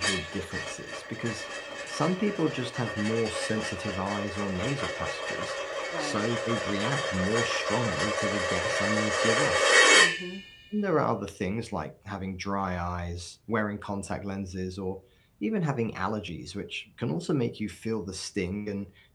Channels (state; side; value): identical; both; correlation 1.00